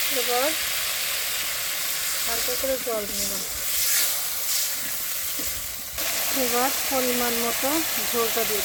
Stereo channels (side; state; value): both; identical; correlation 1.00